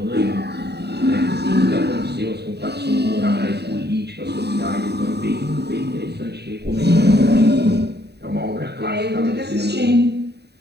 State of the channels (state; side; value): late; left; 0.48 ms